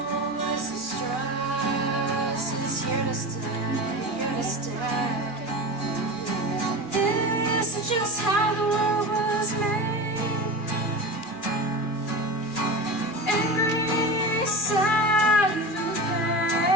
the stress is here to stay, here to stay. This is just how the world was made. Sad through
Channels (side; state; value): right; late; 2.4 ms